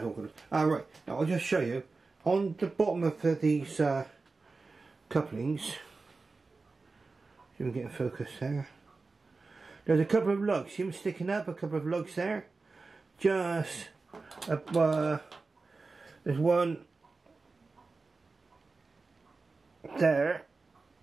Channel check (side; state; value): left; quieter; 3.9 dB